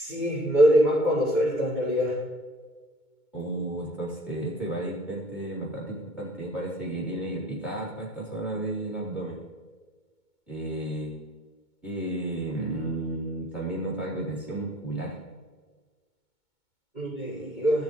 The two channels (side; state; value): right; late; 2.2 ms